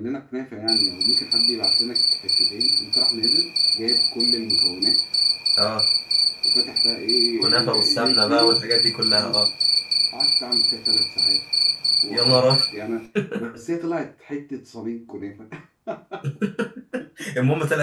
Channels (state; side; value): identical; both; correlation 1.00